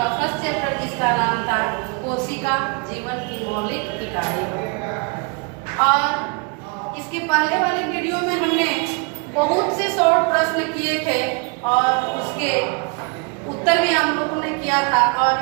फर्स्ट चैप्टर जिसका नाम था कोशिका जीवन की मौलिक इकाई। और इसके पहले वाले वीडियो में हमने बहुत से शॉर्ट प्रश्न किए थे और उसके उत्तर भी हम लोगों ने किया था। और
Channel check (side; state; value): left; quieter; 33.2 dB